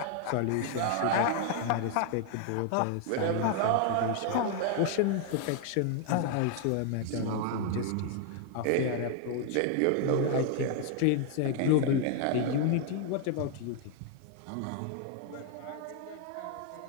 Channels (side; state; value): both; different; correlation 0.00